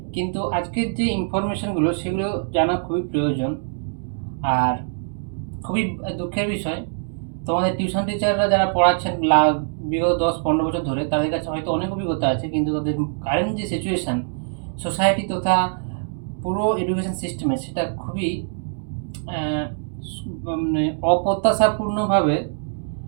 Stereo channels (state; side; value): silent; left; digital silence